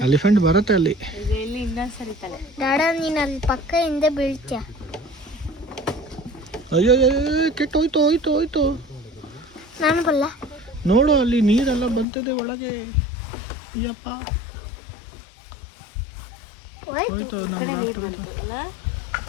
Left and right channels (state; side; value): drops out; right; at 12.1 s